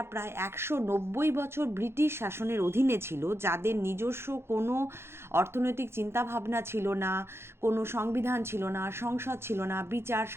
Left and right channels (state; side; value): late; left; 0.12 ms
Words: প্রায় 190 বছর ব্রিটিশ শাসনের অধীনে ছিল, যাদের নিজস্ব কোনো অর্থনৈতিক চিন্তাভাবনা ছিল না, কোনো সংবিধান ছিল না, সংসদ ছিল না, বিচার